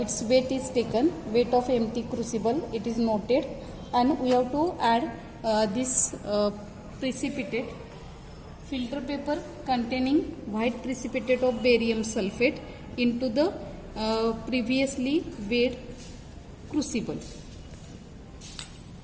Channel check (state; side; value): identical; both; correlation 1.00